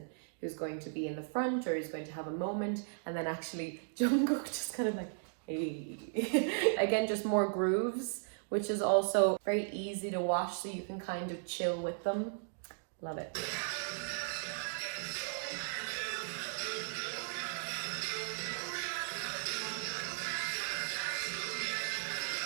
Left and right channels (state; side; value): silent; left; digital silence